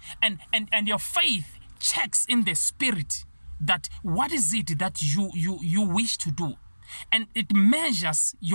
And your faith checks in the spirit that what is it that you wish to do. And it measures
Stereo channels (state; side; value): inverted; both; correlation -1.00